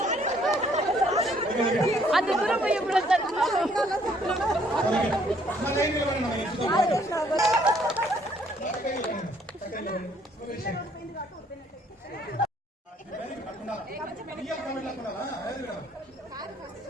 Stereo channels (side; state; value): both; normal; correlation 0.64